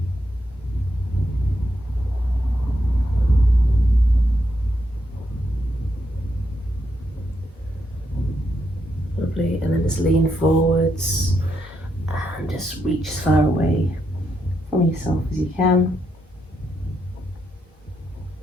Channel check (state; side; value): normal; both; correlation 0.80